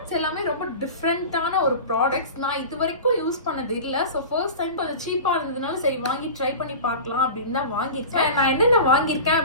எல்லாமே ரொம்ப டிஃப்ரெண்டான ஒரு ப்ராடக்ட்ஸ். நான் இது வரைக்கும் யூஸ் பண்ணது இல்லை. ஸோ ஃபர்ஸ்ட் டைம் கொஞ்சம் சீப்பா இருந்ததுனால சரி வாங்கி ட்ரை பண்ணி பார்க்கலாம் அப்படின்னு தான் வாங்கியிருக்கேன். நான் என்னென்ன வாங்கியிருக்கேன்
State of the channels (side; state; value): both; inverted; correlation -0.33